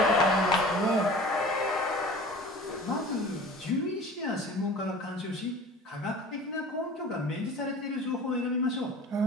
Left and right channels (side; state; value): both; normal; correlation 0.42